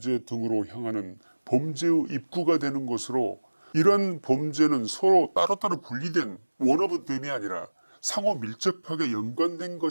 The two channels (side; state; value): both; inverted; correlation -1.00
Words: 등으로 향하는 범죄의 입구가 되는 것으로, 이러한 범죄는 서로 따로따로 분리된 원오브댐이 아니라 상호 밀접하게 연관된